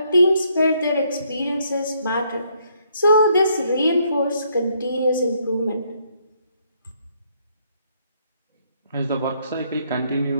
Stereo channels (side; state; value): both; inverted; correlation -0.71